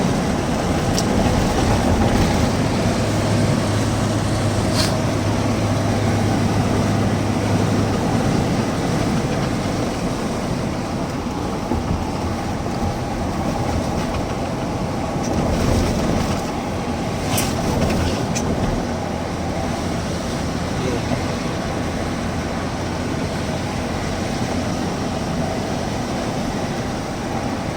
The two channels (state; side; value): identical; both; correlation 1.00